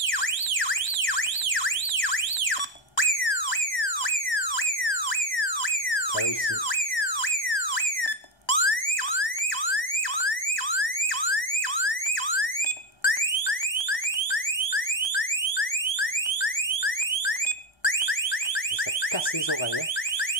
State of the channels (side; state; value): right; late; 1.2 ms